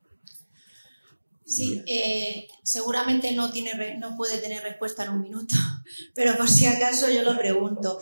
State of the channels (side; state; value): both; inverted; correlation -1.00